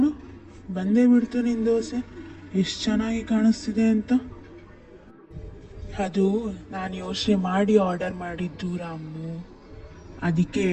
ಬಂದೇ ಬಿಡ್ತು ನಿನ್ನ ದೋಸೆ, ಎಷ್ಟು ಚೆನ್ನಾಗಿ ಕಾಣಿಸ್ತಿದೆ ಅಂತ. ಅದು ನಾನು ಯೋಚನೆ ಮಾಡಿ ಆರ್ಡರ್ ಮಾಡಿದ್ದು ರಾಮು. ಅದಕ್ಕೆ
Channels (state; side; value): identical; both; correlation 1.00